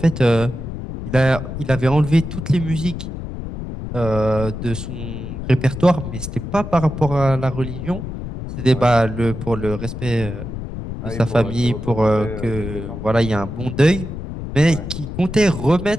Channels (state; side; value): noise; left; rumble, 7 dB below the sound